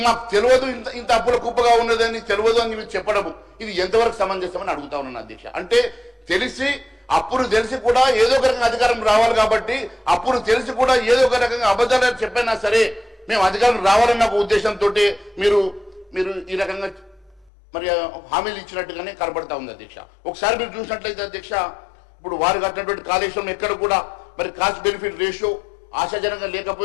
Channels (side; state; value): right; drops out; at 17.5 s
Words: మాకు తెలియదు ఇంత అప్పుల కుప్పగా ఉన్నదని తెలియదు అని మీరు చెప్పడము, ఇది ఎంతవరకు సమంజసమని అడుగుతా ఉన్నాను అధ్యక్ష. అంటే అప్పులు తెలిసి కూడా ఏదో ఒక రకంగా అధికారం రావాలి కాబట్టి, అప్పులు తెలిసి కూడా ఏదో ఒక రకంగా అబద్ధాలు చెప్పైనా సరే మేము అధికారం రావాలన్న ఒక ఉద్దేశంతో మీరు ఈ రకంగా మరి హామీలు ఇచ్చినట్టుగానే కనబడతా ఉంది అధ్యక్ష. ఒకసారి మీరు చూసినట్లయితే అధ్యక్ష, ఇప్పుడు వారు కట్టినటువంటి కాళేశ్వరం ఎక్కడ కూడా మరి కాస్ట్ బెనిఫిట్ రేషియో ఆశాజనంగా